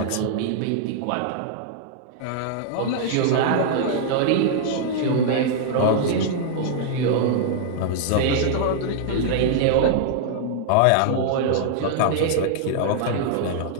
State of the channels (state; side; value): different; both; correlation -0.01